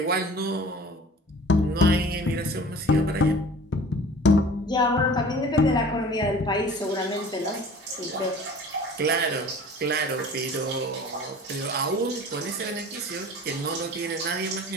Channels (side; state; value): both; normal; correlation 0.45